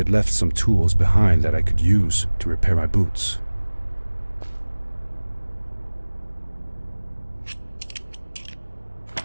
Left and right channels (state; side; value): inverted; both; correlation -1.00